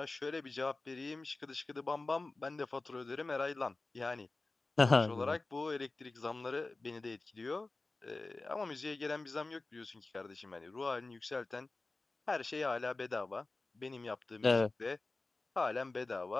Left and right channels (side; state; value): right; quieter; 3.3 dB